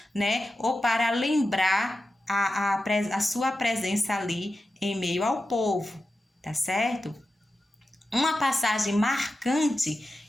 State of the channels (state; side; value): normal; both; correlation 0.92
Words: né? Ou para lembrar a sua presença ali em meio ao povo, tá certo? Uma passagem marcante